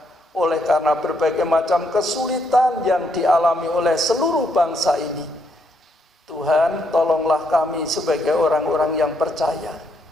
Oleh karena berbagai macam kesulitan yang dialami oleh seluruh bangsa ini. Tuhan, tolonglah kami sebagai orang-orang yang percaya,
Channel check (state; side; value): normal; both; correlation 0.75